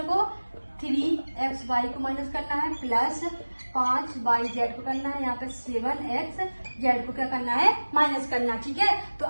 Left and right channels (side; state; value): both; inverted; correlation -1.00